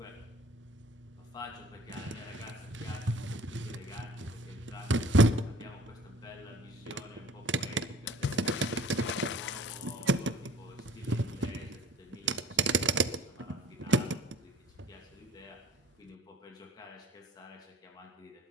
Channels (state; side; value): normal; both; correlation 0.48